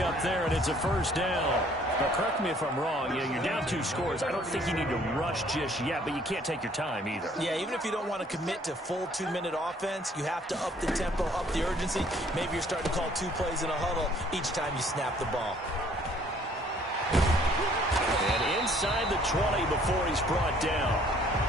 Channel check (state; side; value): normal; both; correlation 0.60